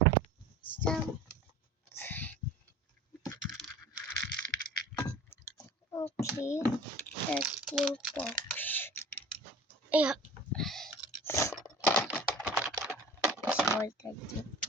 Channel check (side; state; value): both; normal; correlation 0.42